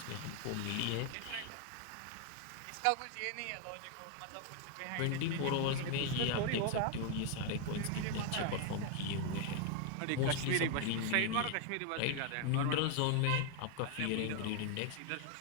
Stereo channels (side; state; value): both; different; correlation 0.01